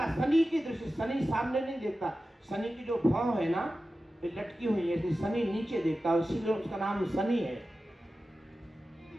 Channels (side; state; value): both; normal; correlation 0.94